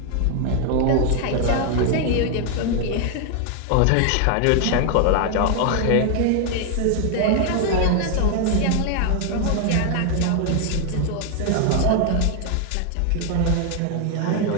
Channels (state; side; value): different; both; correlation 0.00